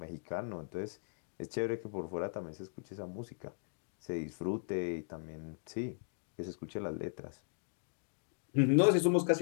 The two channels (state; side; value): silent; right; digital silence